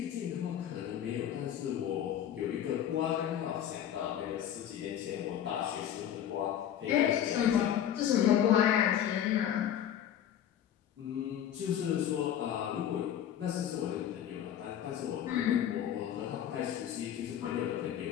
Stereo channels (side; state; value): right; quieter; 10.2 dB